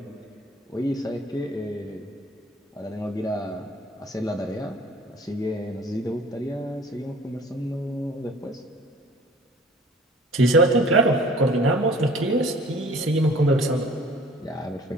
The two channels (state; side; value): normal; both; correlation 0.49